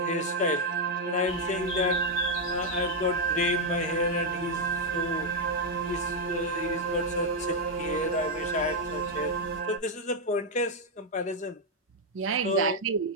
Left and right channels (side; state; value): both; normal; correlation 0.00